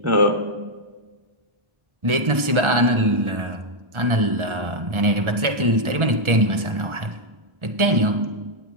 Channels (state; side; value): late; left; 1.3 ms